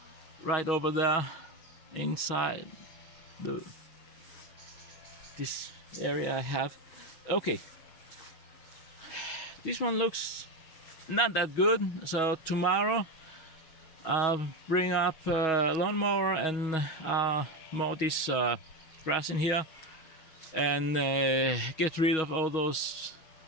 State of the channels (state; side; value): late; right; 6.3 ms